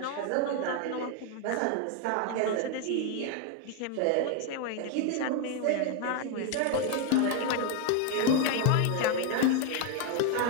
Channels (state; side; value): different; both; correlation 0.01